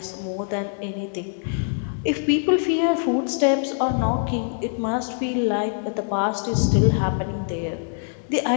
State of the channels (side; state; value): right; silent; digital silence